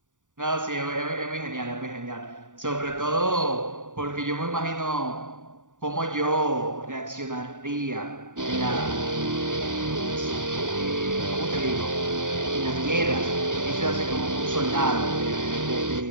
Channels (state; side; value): late; left; 0.87 ms